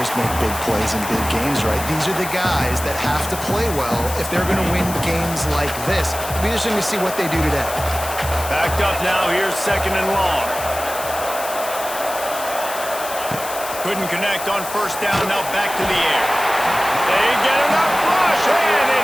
make big plays in big games, right? These are the guys that have to play well if they're going to win games like this. It'll be interesting to see what they do today. Backed up now. Here's second and long. Couldn't connect on first down. Now back to the air. They get enough rush, and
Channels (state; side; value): noise; left; hiss, 9 dB below the sound